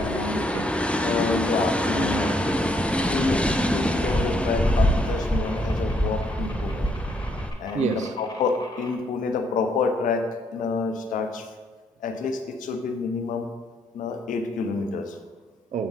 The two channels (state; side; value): normal; both; correlation 0.71